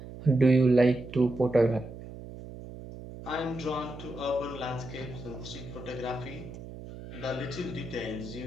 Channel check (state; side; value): noise; right; hum, 13 dB below the sound